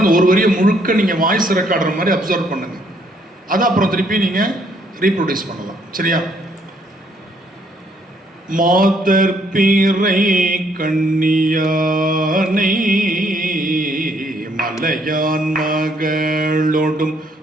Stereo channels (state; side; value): normal; both; correlation 0.68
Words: அந்த ஒரு வரியை முழுக்க நீங்கள் வாய்ஸ் ரெக்கார்டுற மாதிரி அப்சர்வ் பண்ணுங்கள். அதை அப்புறம் திருப்பி நீங்கள் ரீப்ரொடியூஸ் பண்ணலாம். சரியா? மாதர் பிறை கண்ணியானை மலையான் மகளோடும்